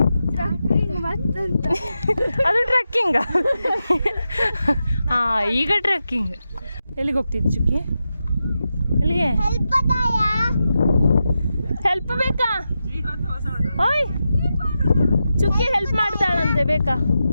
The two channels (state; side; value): inverted; both; correlation -0.89